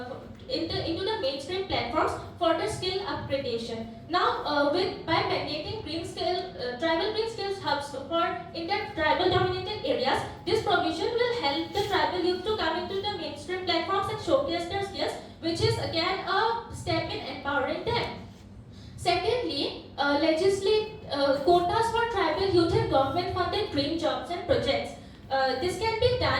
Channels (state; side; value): identical; both; correlation 1.00